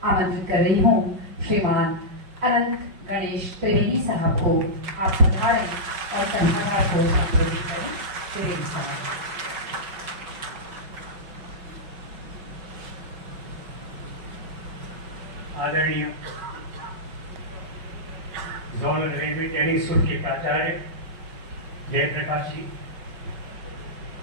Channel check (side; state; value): left; late; 5.5 ms